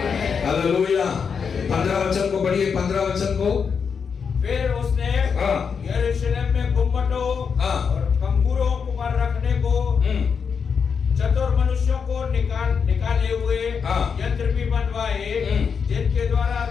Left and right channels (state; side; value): quieter; right; 6.2 dB